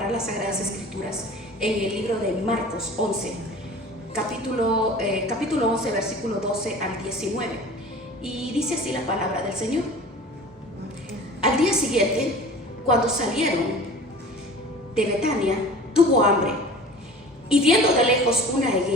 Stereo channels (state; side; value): normal; both; correlation 0.41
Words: las Sagradas Escrituras en el libro de Marcos 11, capítulo 11, versículo 12 al 19. Y dice así la palabra del Señor. Al día siguiente, cuando salieron de Betania, tuvo hambre, y viendo de lejos una